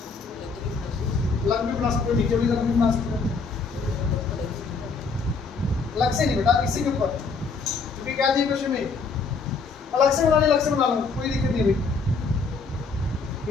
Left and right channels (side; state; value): right; quieter; 4.6 dB